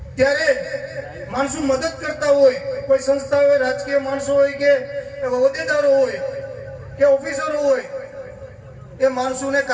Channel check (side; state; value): both; identical; correlation 1.00